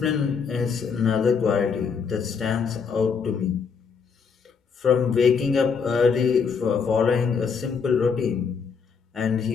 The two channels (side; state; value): right; quieter; 5.9 dB